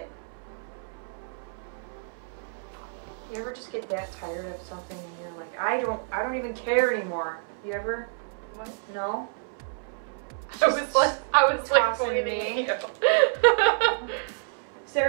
You ever just get that tired of something and you're like, I don't even care anymore. You ever? What? No? I was like tossing me.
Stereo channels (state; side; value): silent; left; 59 dB below the other